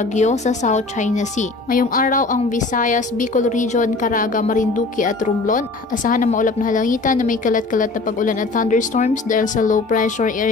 sa South China Sea. Ngayong araw ang Visayas, Bicol Region, Caraga, Marinduque at Romblon asahan na maulap na halangitan na may kalat-kalat na pag-ulan at thunderstorms dahil sa low pressure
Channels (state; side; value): quieter; right; 3.5 dB